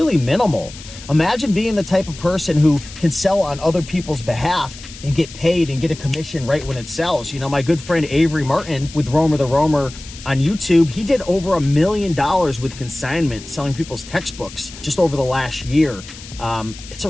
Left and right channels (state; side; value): noise; left; hiss, 16 dB below the sound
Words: minimal. Imagine being the type of person who can sell on other people's behalf and get paid and get a commission right when it sells. My good friend Avery Martin with Romer the Roamer on YouTube, he did over $1 million with consignment, selling people's textbooks just over the last year. It's a